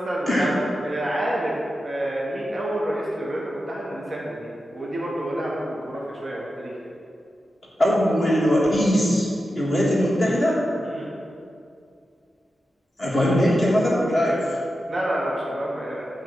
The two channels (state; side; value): normal; both; correlation 0.90